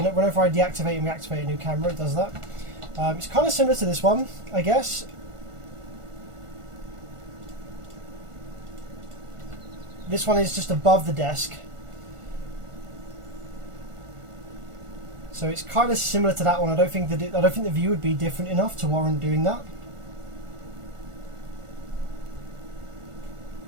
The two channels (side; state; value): left; late; 1.4 ms